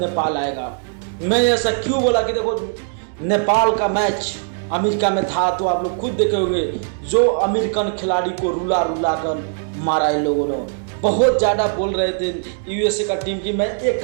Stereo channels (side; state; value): left; silent; digital silence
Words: आएगा। मैं ऐसा क्यों बोला कि देखो नेपाल का मैच अमेरिका में था तो आप लोग खुद देखे होंगे, जो अमेरिकन खिलाड़ी को रुला रुला कर मारा इन लोगों ने। बहुत ज़्यादा बोल रहे थे यूएसए का टीम की मैं एक